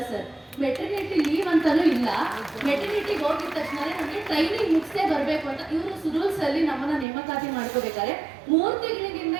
ಸರ್. ಮೆಟರ್ನಿಟಿ ಲೀವ್ ಅಂತಲೂ ಇಲ್ಲ. ಮೆಟರ್ನಿಟಿಗೆ ಹೋಗಿದ ತಕ್ಷಣ ನಮಗೆ ಟ್ರೈನಿಂಗ್ ಮುಗಿಸೇ ಬರಬೇಕು ಅಂತ ಇವರು ರೂಲ್ಸಲ್ಲಿ ನಮ್ಮನ್ನ ನೇಮಕಾತಿ ಮಾಡ್ಕೋಬೇಕಾದ್ರೆ 3 ತಿಂಗಳಿಗಿಂತ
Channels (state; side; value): drops out; left; at 7.1 s